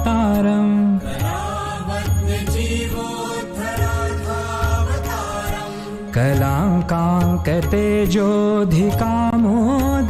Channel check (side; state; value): both; identical; correlation 1.00